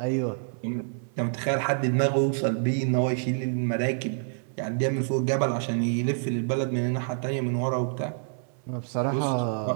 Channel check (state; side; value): silent; left; 57 dB below the other